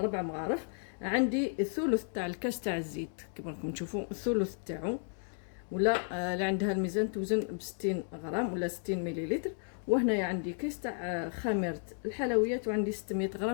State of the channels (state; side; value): silent; right; 56 dB below the other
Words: مغارف. عندي الثلث تاع الكاس تاع الزيت كما راكم تشوفوا الثلث تاعو، ولا اللي عندها الميزان توزن ب 60 غرام ولا 60 مليلتر. وهنايا عندي كيس تاع خميره الحلويات، وعندي 600